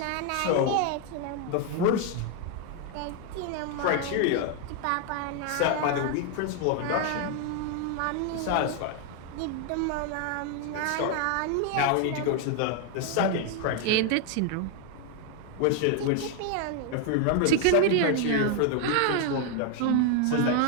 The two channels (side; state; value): both; different; correlation 0.00